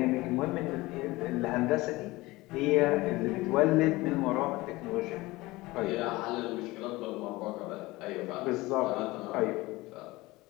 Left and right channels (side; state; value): right; quieter; 20.4 dB